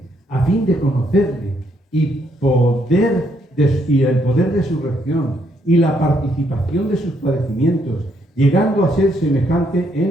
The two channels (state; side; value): normal; both; correlation 0.73